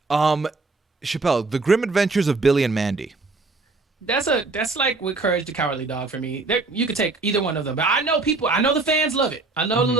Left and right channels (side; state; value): left; quieter; 3.6 dB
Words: Chappell, The Grim Adventures of Billy and Mandy. That's like with Courage the Cowardly Dog for me. You could take either one of them, but I know people. I know the fans love it. I know